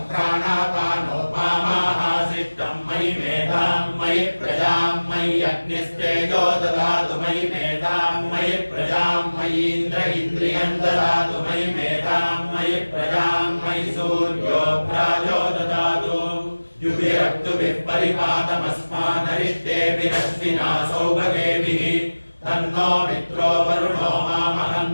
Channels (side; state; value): both; inverted; correlation -1.00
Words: प्राणापानो मामाहासिष्टं मयि मेधां मयि प्रजां मयि अग्निस्तेजो ददातु मयि मेधां मयि प्रजां मयीन्द्र इन्द्रियं ददातु मयि मेधां मयि प्रजां मयि सूर्यो प्राजो ददातु युभिरक्तुभिः परिपातमस्मानरिष्टेभिरश्विना सौभगेभिः तन्नो मित्रो वरुणो